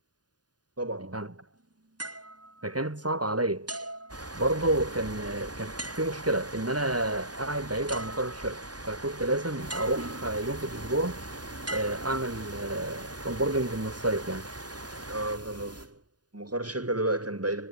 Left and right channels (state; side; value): late; left; 0.69 ms